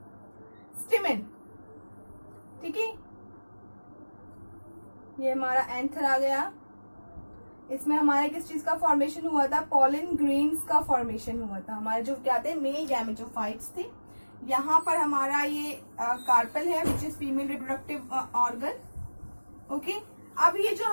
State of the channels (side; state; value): both; inverted; correlation -1.00